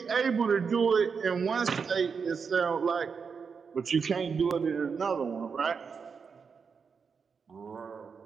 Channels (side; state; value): left; quieter; 5.8 dB